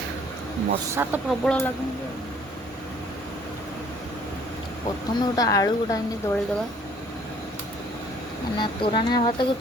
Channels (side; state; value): both; normal; correlation 0.58